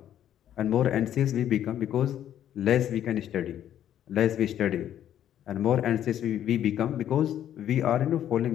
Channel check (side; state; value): right; quieter; 10.8 dB